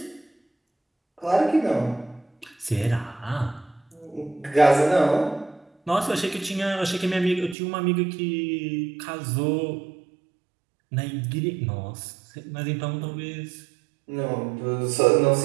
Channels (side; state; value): left; drops out; at 7.6 s